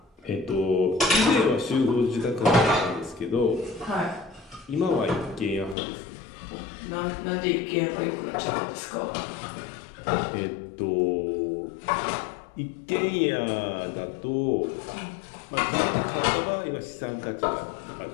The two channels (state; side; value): drops out; right; at 5.8 s